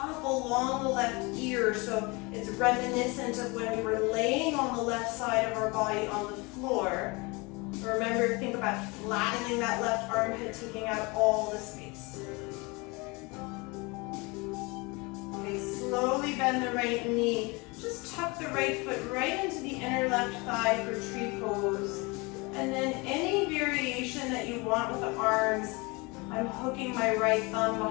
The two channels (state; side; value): quieter; right; 26.5 dB